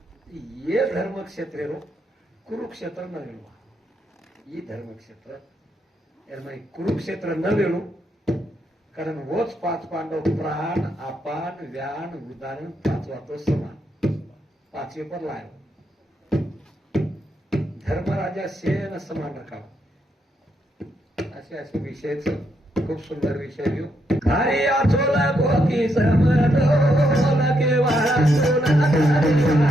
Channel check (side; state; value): both; normal; correlation 0.78